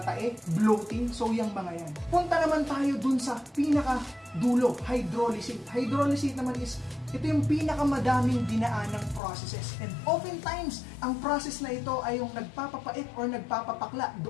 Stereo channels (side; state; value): right; drops out; at 9.2 s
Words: bloating, so yung mga yan. Punta naman tayo dun sa pinaka-dulo, hydrolysate. Hydrolysate naman is ito yung pinakamadaming dinaanang processes. And oftentimes, ang process na ito ay yung nagpapapait or nagpapapakla